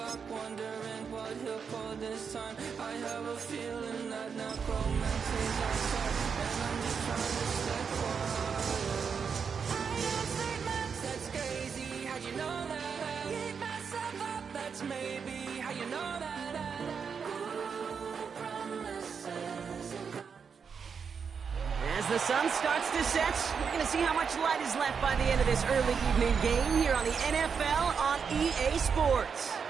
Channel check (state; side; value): quieter; left; 6.2 dB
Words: wondering what he'll pull this time. I have a feeling that necromancy's outside, and I'm just trying to stay quiet. I use statements, that's crazy. How'd you know that? I keep myself up, that's maybe how you know that. As the sun starts to set, we're going to see how much light is left by the end of this early evening game here on the NFL on EA Sports.